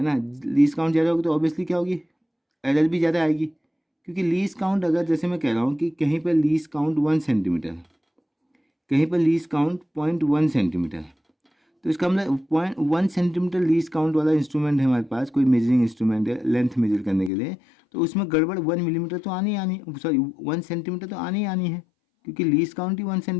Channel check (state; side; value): drops out; right; at 17.3 s